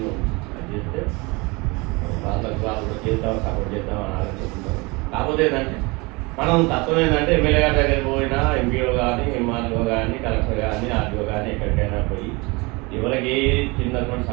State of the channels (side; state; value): left; quieter; 26.1 dB